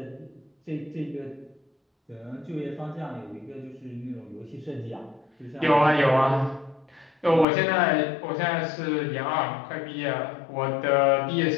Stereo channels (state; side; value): drops out; right; at 7.5 s